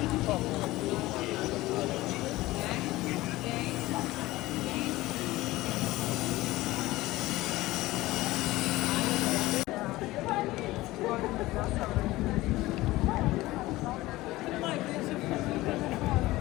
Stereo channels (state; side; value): quieter; right; 18.3 dB